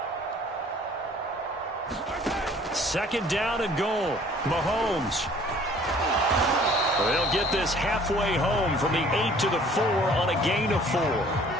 Second down and goal. Mahomes. They'll get this halfway home from the 8 to the 4 on a gain of 4.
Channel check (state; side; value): normal; both; correlation 0.54